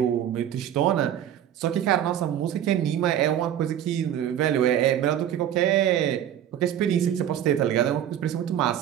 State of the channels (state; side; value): quieter; left; 10.5 dB